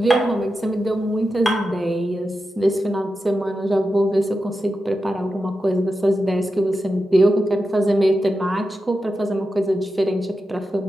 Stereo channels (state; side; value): normal; both; correlation 0.90